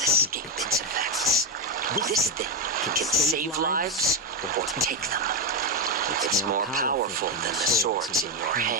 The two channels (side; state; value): both; normal; correlation 0.07